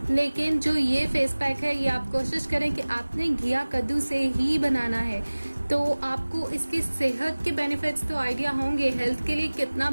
लेकिन जो ये फेस पैक है ये आप कोशिश करें कि आपने घिया कद्दू से ही बनाना है, तो आपको इसकी सेहत के बेनिफिट्स तो आइडिया होंगे, हेल्थ के लिए कितना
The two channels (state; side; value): inverted; both; correlation -1.00